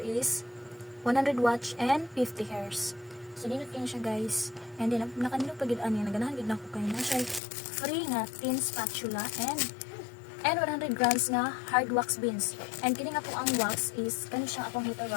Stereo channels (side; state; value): right; drops out; at 7.4 s